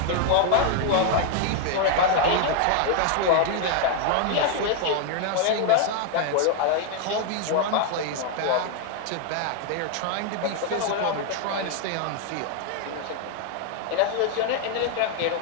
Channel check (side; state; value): both; different; correlation 0.00